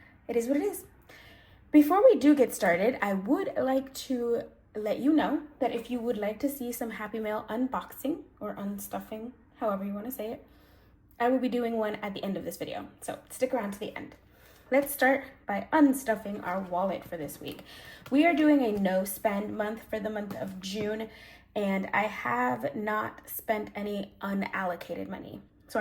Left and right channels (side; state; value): both; identical; correlation 1.00